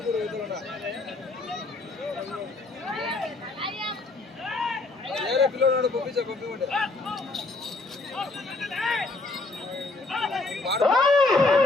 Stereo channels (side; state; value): right; quieter; 3.3 dB